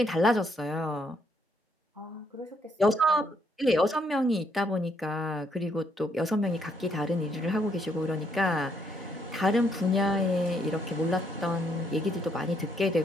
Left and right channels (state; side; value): normal; both; correlation 0.72